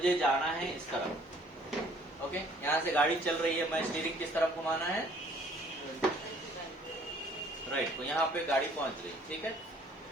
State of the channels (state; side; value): normal; both; correlation 0.58